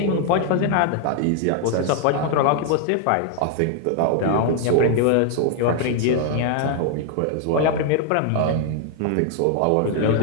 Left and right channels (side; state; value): both; different; correlation 0.00